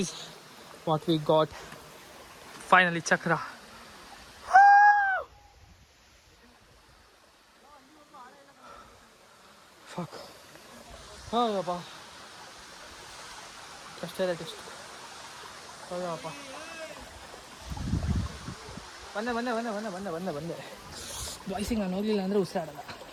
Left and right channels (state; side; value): identical; both; correlation 1.00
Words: what we got. Finally, Chakra. Fuck. Oh, yapa. Just tell it. Oh, yapa. ಬಂದೆ ಬಾಯ್ಸಿಗೆ ನಾನು ಹೋಗ್ಲಿಲ್ಲ ಅಂದರೆ ಉಸಿರಾಡಲ್ಲ.